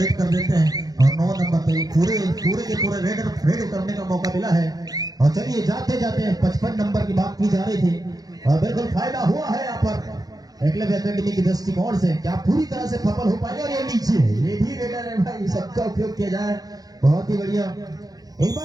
कर देते हैं और 9 नंबर पे पूरे के पूरे रेड करने का मौका मिला है। और चलिए जाते जाते 55 नंबर की बात की जा रही थी और बिल्कुल फायदा हुआ है यहाँ पर एकलव्य एकेडमी की दृष्टिकोण से। क्या पूरी तरह से सफल हो पाएगा? और ये नीचे है, ये भी रेडर है भाई, सबका उपयोग किया जाए, बहुत ही बढ़िया। एक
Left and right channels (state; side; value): late; left; 0.18 ms